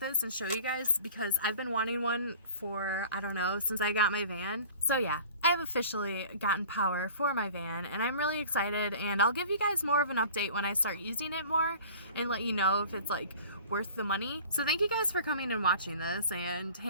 and show you guys because I've been wanting one for, I don't know, since I got my van. So yeah, I have officially gotten power for my van and I'm really excited, and I'll give you guys more of an update when I start using it more and let you know if it's like worth the money. So thank you guys for coming and watching this and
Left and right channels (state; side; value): inverted; both; correlation -0.43